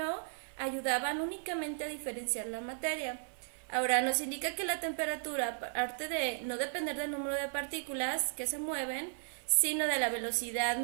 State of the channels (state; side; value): silent; left; 54 dB below the other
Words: ayudaban únicamente a diferenciar la materia. Ahora, nos indica que la temperatura, aparte de no depender del número de partículas que se mueven, sino de la velocidad